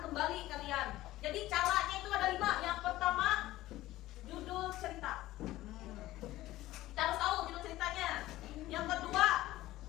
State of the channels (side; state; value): right; quieter; 16.2 dB